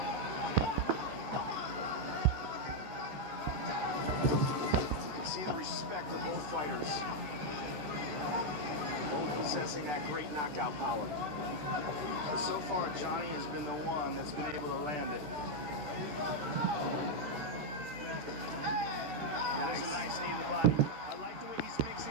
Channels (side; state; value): left; late; 13 ms